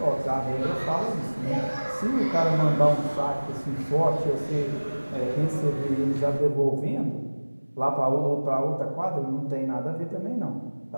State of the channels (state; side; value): inverted; both; correlation -1.00